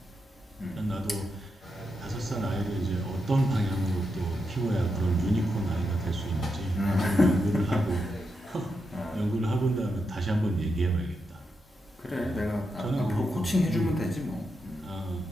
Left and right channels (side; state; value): both; normal; correlation 0.85